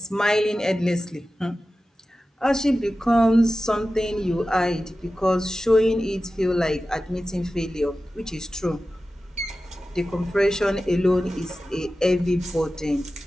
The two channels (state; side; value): normal; both; correlation 0.94